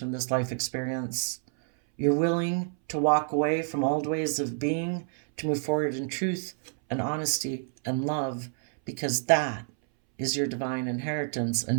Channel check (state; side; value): silent; left; 59 dB below the other